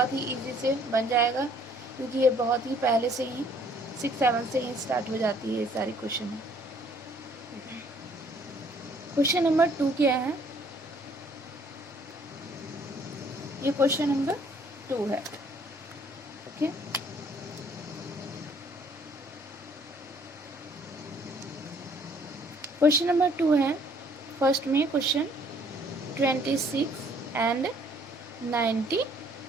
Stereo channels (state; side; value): normal; both; correlation 0.61